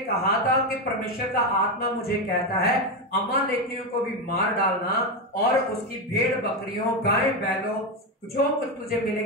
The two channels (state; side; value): normal; both; correlation 0.11